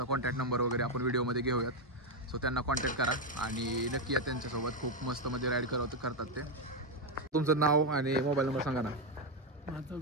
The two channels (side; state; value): both; normal; correlation 0.05